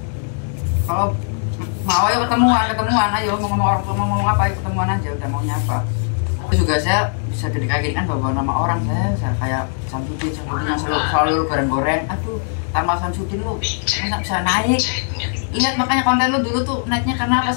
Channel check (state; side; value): silent; right; 66 dB below the other